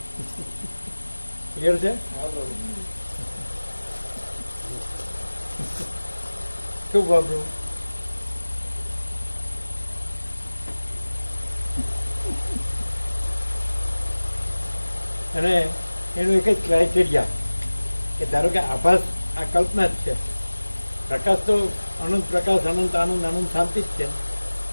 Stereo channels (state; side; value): inverted; both; correlation -1.00